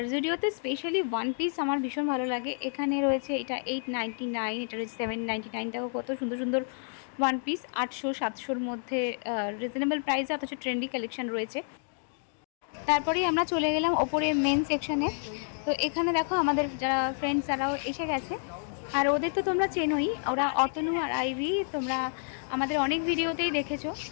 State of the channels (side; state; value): right; silent; digital silence